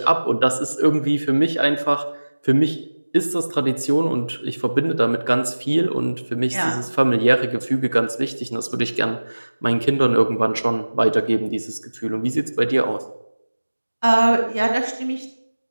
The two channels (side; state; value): both; inverted; correlation -1.00